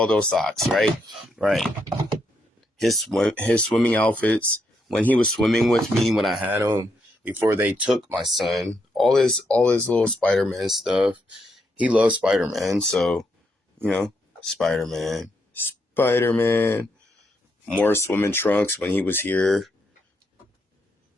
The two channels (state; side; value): normal; both; correlation 0.79